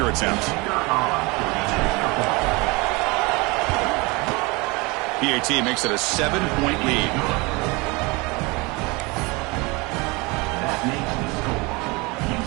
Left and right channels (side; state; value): left; quieter; 25.9 dB